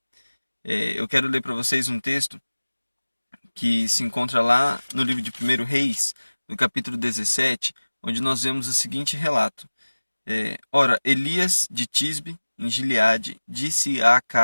Eu quero ler para vocês um texto que se encontra lá no livro de 1 Reis, no capítulo 17, onde nós vemos o seguinte relato. Ora, Elias de Tisbe, em Gileade, disse a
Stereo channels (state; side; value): inverted; both; correlation -1.00